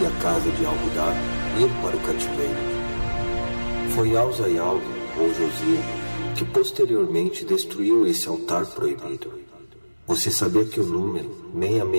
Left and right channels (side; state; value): both; inverted; correlation -1.00